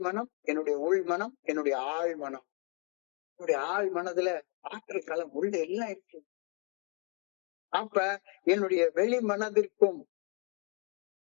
மனம், என்னுடைய உள் மனம், என்னுடைய ஆள் மனம். என்னுடைய ஆள் மனதுல ஆற்றல் களம் உள்ள எல்லாம் இருக்கு. அப்ப என்னுடைய வெளி மனதிற்கும்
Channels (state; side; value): quieter; right; 37.2 dB